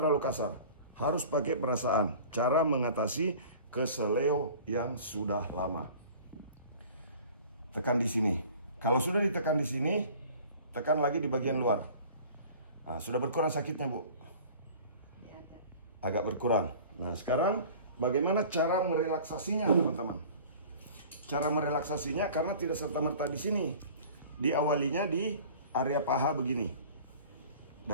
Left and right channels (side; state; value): both; inverted; correlation -0.44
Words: kasar. Harus pakai perasaan. Cara mengatasi keseleo yang sudah lama. Tekan di sini. Kalau sudah ditekan di sini, tekan lagi di bagian luar. Nah, sudah berkurang sakitnya, Bu? Agak berkurang. Nah, sekarang bagaimana cara merelaksasinya, teman-teman? cara merelaksasinya karena tidak serta-merta di sini. Diawalinya di area paha begini.